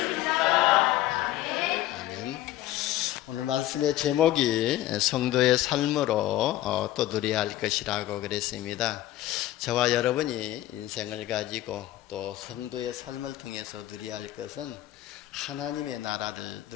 아멘. 오늘 말씀의 제목이 성도의 삶으로 또 누려야 할 것이라고 그랬습니다. 저와 여러분이 인생을 가지고 또 성도의 삶을 통해서 누려야 할 것은 하나님의 나라를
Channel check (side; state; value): right; quieter; 14.8 dB